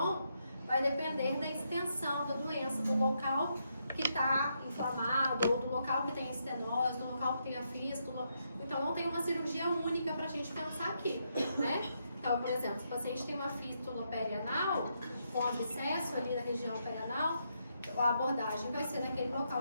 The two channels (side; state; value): both; inverted; correlation -0.79